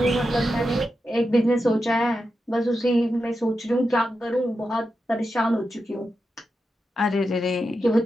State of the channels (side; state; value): both; normal; correlation 0.89